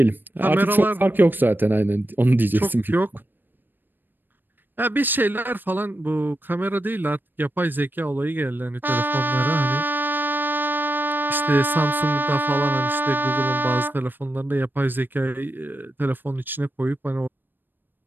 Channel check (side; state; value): left; late; 0.093 ms